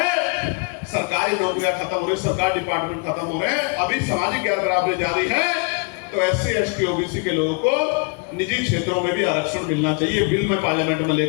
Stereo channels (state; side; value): quieter; right; 32.9 dB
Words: सरकारी नौकरियां खत्म हो रही, सरकारी डिपार्टमेंट खत्म हो रहे हैं, अभी सामाजिक गैर बराबरी जारी है, तो एससी एसटी ओबीसी के लोगों को निजी क्षेत्रों में भी आरक्षण मिलना चाहिए। बिल में पार्लियामेंट में